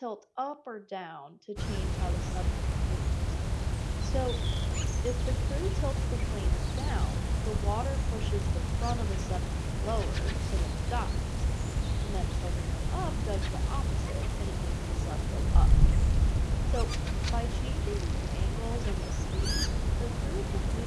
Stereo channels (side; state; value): both; identical; correlation 1.00